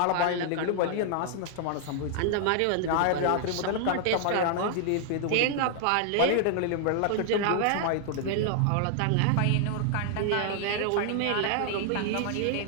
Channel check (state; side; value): different; both; correlation 0.00